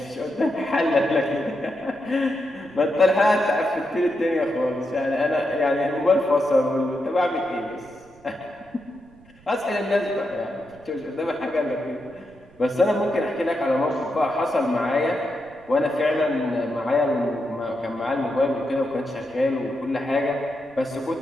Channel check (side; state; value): right; noise; rumble, 27 dB below the sound